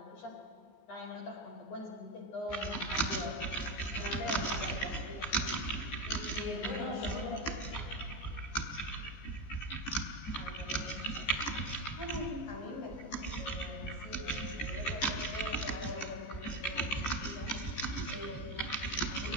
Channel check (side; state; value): right; late; 14 ms